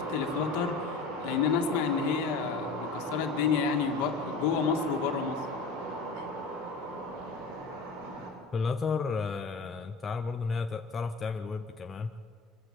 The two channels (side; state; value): right; quieter; 4.2 dB